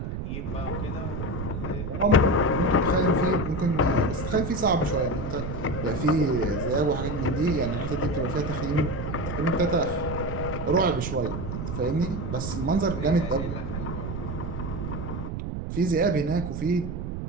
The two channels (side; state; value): right; noise; rumble, 5 dB below the sound